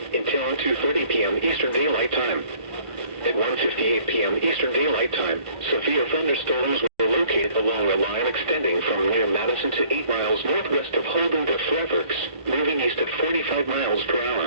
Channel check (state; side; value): late; left; 1.5 ms